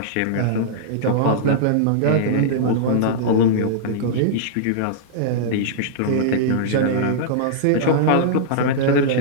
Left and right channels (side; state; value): both; different; correlation -0.02